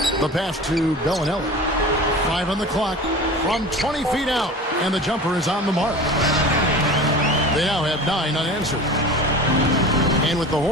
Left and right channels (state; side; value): normal; both; correlation 0.35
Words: The pass to Bellinelli. 5 on the clock from 20 feet out, and the jumper is on the mark. They now have 9 unanswered. And with the